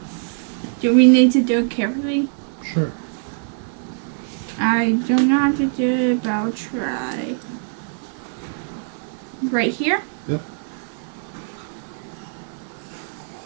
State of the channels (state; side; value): silent; left; digital silence